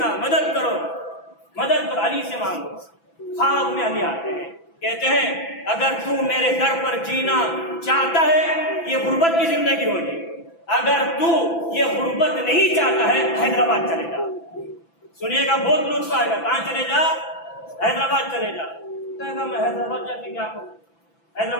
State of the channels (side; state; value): right; late; 6.0 ms